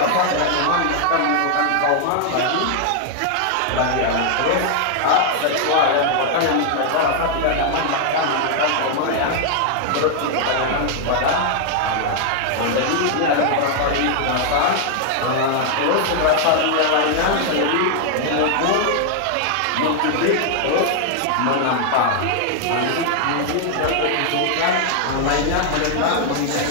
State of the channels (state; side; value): different; both; correlation 0.00